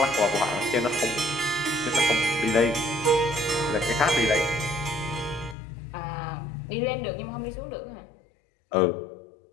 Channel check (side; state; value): right; drops out; at 5.6 s